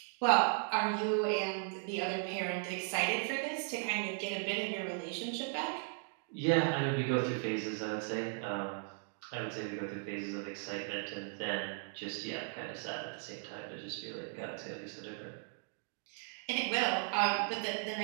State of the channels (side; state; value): left; silent; 53 dB below the other